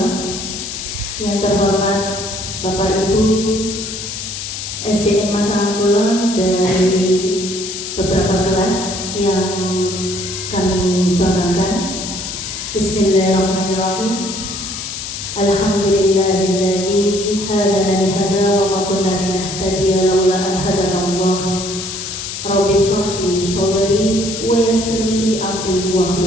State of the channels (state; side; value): noise; left; hiss, 7 dB below the sound